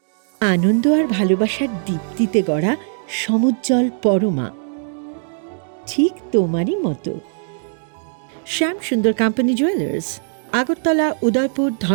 আনন্দ আর ভালোবাসার দীপ্তিতে গড়া সমুজ্জ্বল পরমা, ঠিক তোমারই মতো। শ্যাম সুন্দর কোম্পানি জুয়েলার্স, আগরতলা, উদয়পুর,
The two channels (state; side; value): silent; left; digital silence